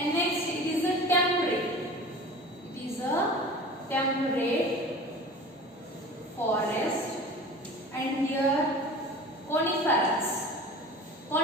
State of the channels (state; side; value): normal; both; correlation 0.39